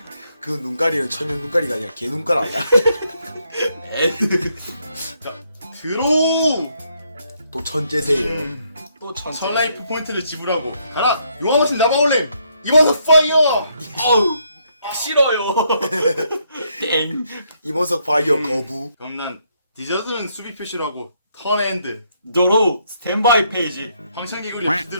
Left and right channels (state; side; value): inverted; both; correlation -0.73